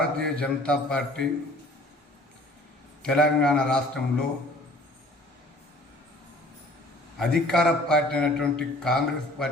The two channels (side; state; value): both; normal; correlation 0.50